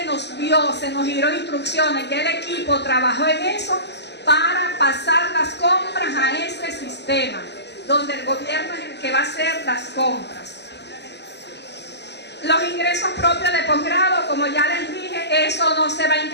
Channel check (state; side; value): late; right; 0.50 ms